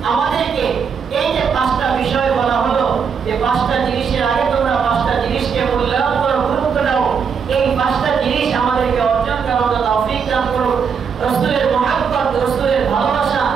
আমাদেরকে এই যে পাঁচটা বিষয় বলা হলো, যে পাঁচটা জিনিসের আগে তোমরা পাঁচটা জিনিসকে মূল্যায়ন করো, গুরুত্ব দাও, এই পাঁচটা জিনিস আমাদেরকে অর্জন করার তৌফিক দান করো। রাসূলের মুহাব্বত, রাসূলের ভালোবাসা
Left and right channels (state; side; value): quieter; left; 6.4 dB